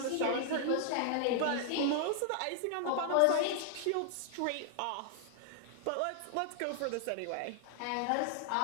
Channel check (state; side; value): different; both; correlation 0.00